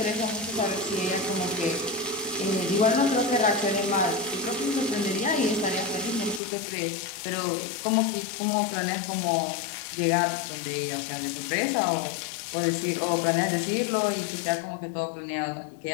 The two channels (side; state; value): right; drops out; at 6.4 s